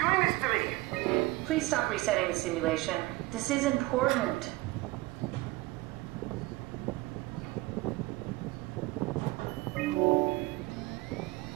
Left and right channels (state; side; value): quieter; left; 20.4 dB